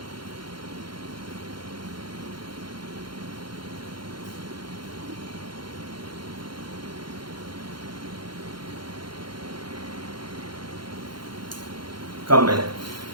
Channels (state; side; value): late; left; 0.72 ms